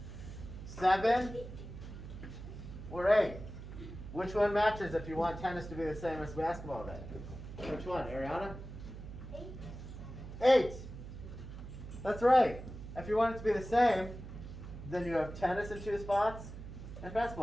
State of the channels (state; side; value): noise; right; hum, 11 dB below the sound